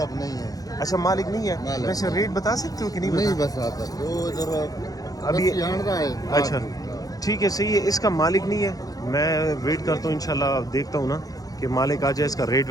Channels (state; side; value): late; right; 0.18 ms